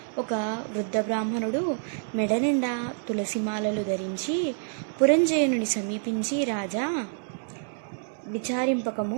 ఒక వృద్ధ బ్రాహ్మణుడు మెడ నిండా తులసిమాలలు ధరించి పురంజయుని సమీపించి, రాజా,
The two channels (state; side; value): silent; left; digital silence